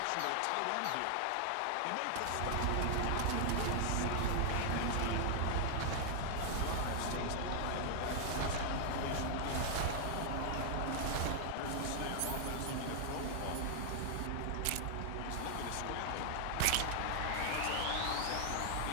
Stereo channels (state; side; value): different; both; correlation 0.00